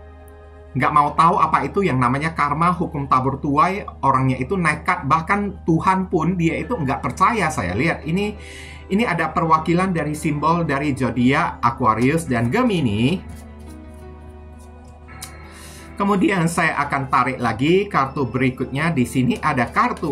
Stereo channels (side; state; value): both; identical; correlation 1.00